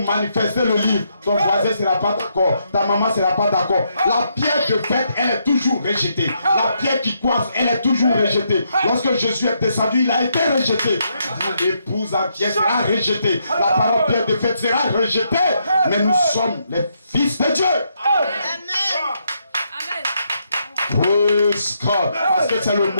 le livre, ton voisin ne sera pas d'accord. Ta maman ne sera pas d'accord. La pierre de fête, elle est toujours rejetée. La pierre qui coiffe, elle est toujours rejetée. Lorsque Jésus est descendu, il a été rejeté. L'épouse en pierre sera rejetée. La parole pierre de fête sera rejetée. Mais nous sommes les fils de Dieu. Amen. Praise God. Parce que c'est le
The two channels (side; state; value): both; inverted; correlation -0.77